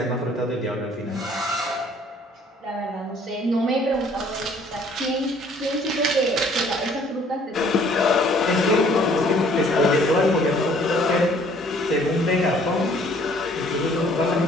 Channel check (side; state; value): both; normal; correlation 0.58